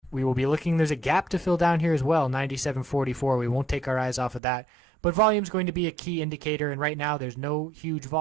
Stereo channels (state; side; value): drops out; left; at 4.4 s